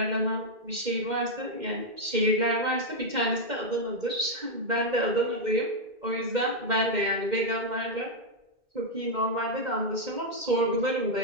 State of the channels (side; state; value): left; late; 2.1 ms